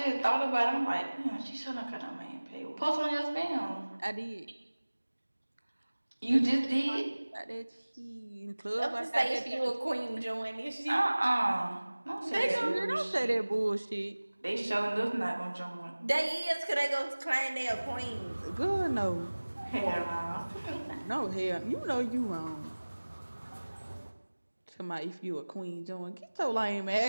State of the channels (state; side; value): inverted; both; correlation -1.00